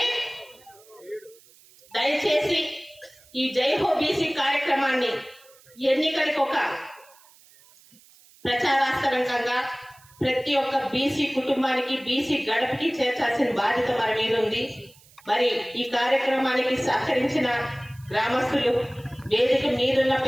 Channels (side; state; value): right; noise; hiss, 27 dB below the sound